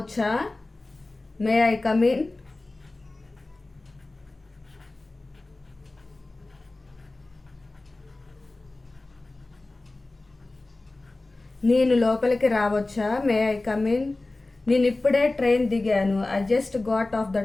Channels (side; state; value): right; quieter; 3.1 dB